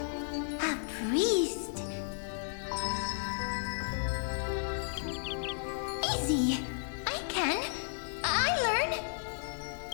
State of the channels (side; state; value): right; silent; 55 dB below the other